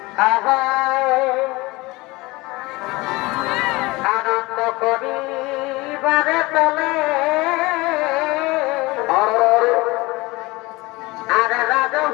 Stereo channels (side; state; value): right; quieter; 22.3 dB